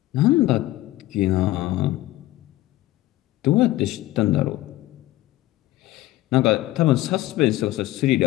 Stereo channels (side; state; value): right; quieter; 16.5 dB